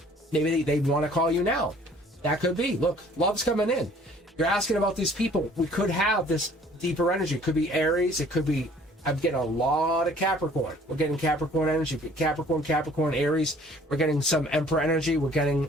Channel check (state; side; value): normal; both; correlation 0.55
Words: Maybe they want to call you now. That could be. Look, love's coming in. You're asking about these people. We could have this deeper energy. It could be Aries. It could be, I'm getting a lot of Capricorn. We're getting Capricorn energy. Capricorn, Aries. We're getting some Emperor energy. We're getting